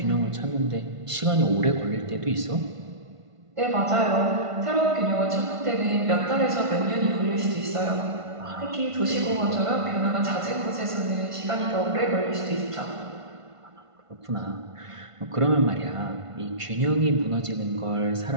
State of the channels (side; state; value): left; late; 1.5 ms